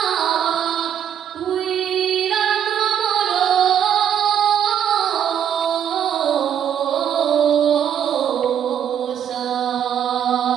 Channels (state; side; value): quieter; left; 9.1 dB